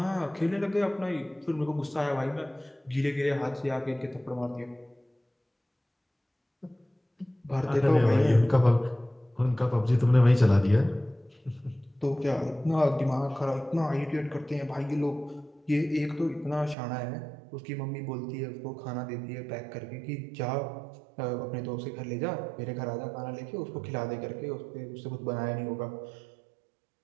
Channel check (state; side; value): drops out; left; at 16.8 s